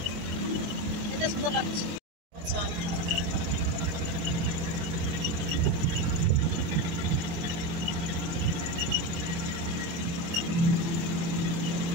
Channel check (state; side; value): late; left; 24 ms